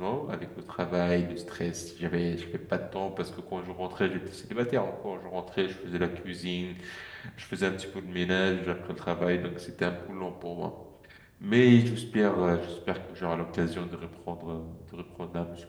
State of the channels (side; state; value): both; identical; correlation 1.00